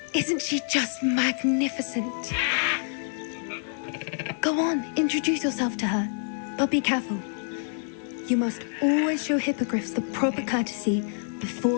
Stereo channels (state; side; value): silent; right; digital silence